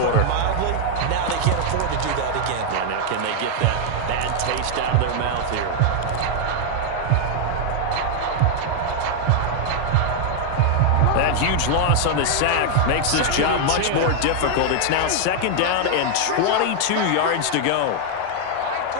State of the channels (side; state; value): both; different; correlation 0.00